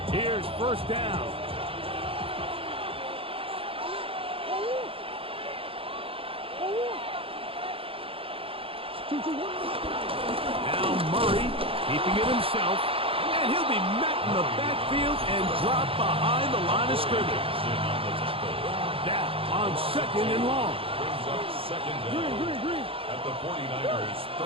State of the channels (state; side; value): late; left; 0.27 ms